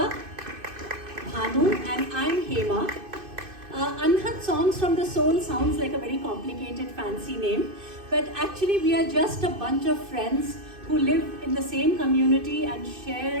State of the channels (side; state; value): left; late; 2.6 ms